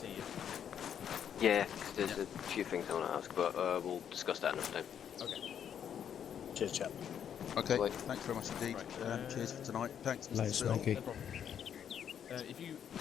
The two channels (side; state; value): right; quieter; 8.7 dB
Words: you. Yeah, 'cause there's a few things I want to ask, but we'll discuss that another time. Okay. Cheers, chap. Okay, Right. thanks very much indeed. Right, cheers for tonight. Thanks, Mr. Later, Sill. Smokey. No problem. If you